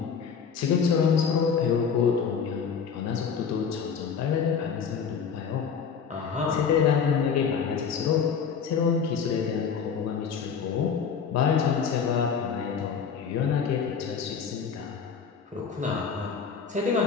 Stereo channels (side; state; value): right; quieter; 6.5 dB